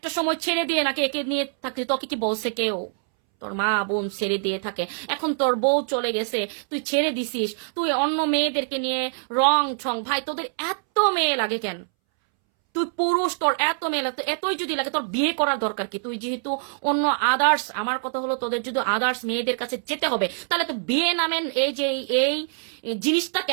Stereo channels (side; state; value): left; silent; 62 dB below the other